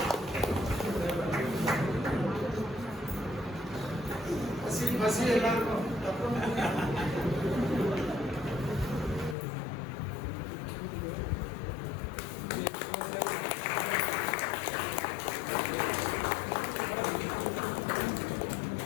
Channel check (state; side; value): drops out; right; at 9.3 s